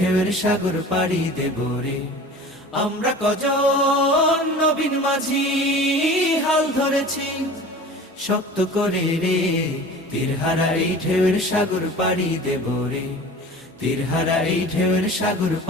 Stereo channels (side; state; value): both; normal; correlation 0.40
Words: সাগর পাড়ি দেব রে। আমরা কজন নবীন মাঝি হাল ধরেছি শক্ত করে রে, তীরহারা এই ঢেউয়ের সাগর পাড়ি দেব রে, তীরহারা এই ঢেউয়ের সাগর